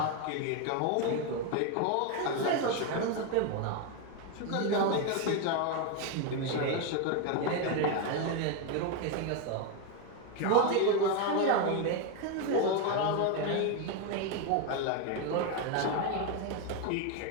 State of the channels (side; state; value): both; different; correlation 0.02